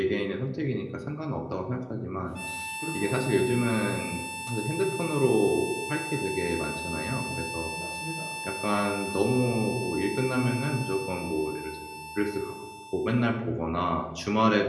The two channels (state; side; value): identical; both; correlation 1.00